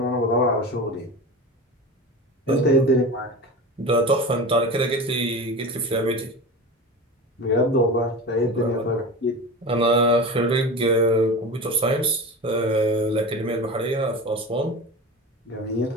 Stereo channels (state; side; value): normal; both; correlation 0.29